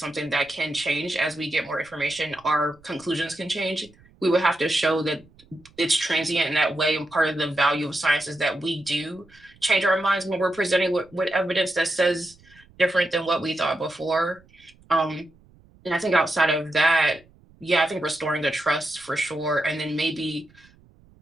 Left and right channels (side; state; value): right; noise; rumble, 28 dB below the sound